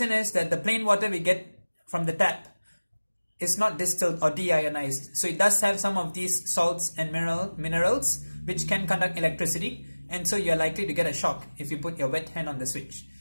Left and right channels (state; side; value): inverted; both; correlation -1.00